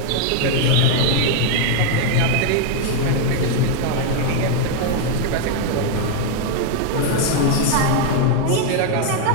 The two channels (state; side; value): different; both; correlation 0.01